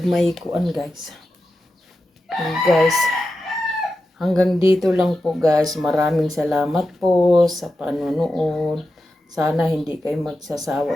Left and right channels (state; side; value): normal; both; correlation 0.90